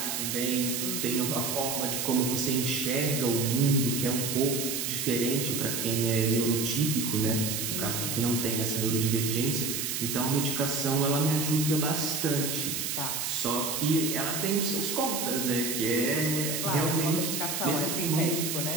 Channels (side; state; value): right; noise; hiss, 2 dB below the sound